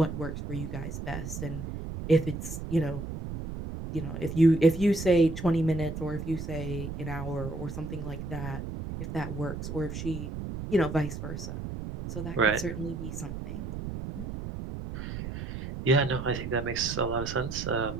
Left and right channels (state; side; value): noise; right; rumble, 7 dB below the sound